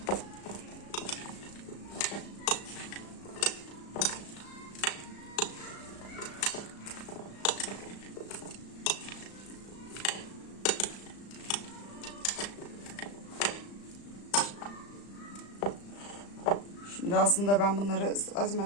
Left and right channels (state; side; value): late; right; 35 ms